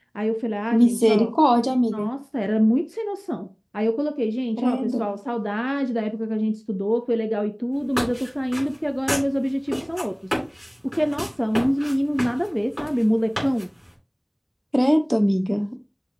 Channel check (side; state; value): both; identical; correlation 1.00